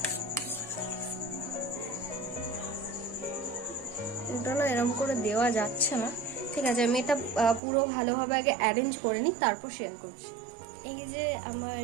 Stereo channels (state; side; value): drops out; left; at 7.6 s